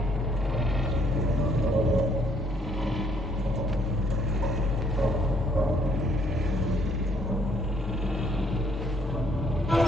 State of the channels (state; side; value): normal; both; correlation 0.66